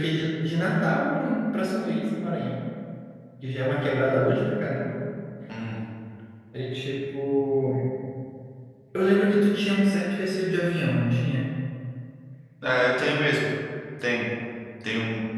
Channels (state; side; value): identical; both; correlation 1.00